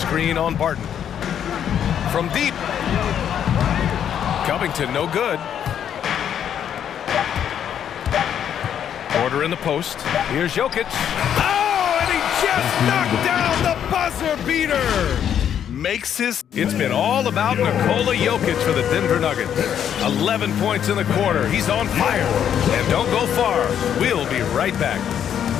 on Barton. From deep. Covington, no good. Order in the post. Here's Jokic. Oh, and he just knocked down the buzzer beater. Makes his... It's been all about Nikola Jokic for the Denver Nuggets. 11 points in the quarter. He's on fire. And don't go far. We'll be right back.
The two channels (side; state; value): right; quieter; 9.2 dB